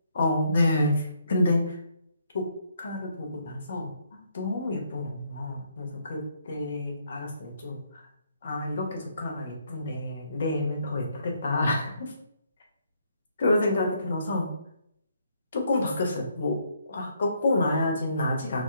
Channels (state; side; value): inverted; both; correlation -0.71